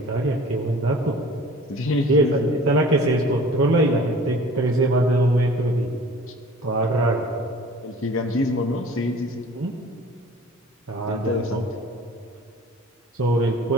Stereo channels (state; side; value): normal; both; correlation 0.46